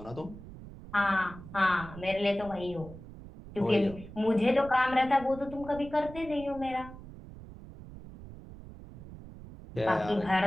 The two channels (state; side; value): noise; right; rumble, 15 dB below the sound